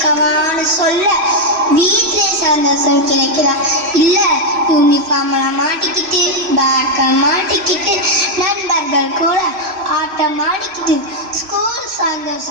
சொல்ல வீட்டிலே சந்தோஷம் கிடைக்குதா? இல்ல யூனிஃபார்ம்ல மாட்டிக்கிட்டு பேக்கை மாட்டிக்கிட்டு நண்பர்கள் கூட ஆட்டம் ஆடிக்கிட்டு ஸ்கூல்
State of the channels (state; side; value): late; left; 3.0 ms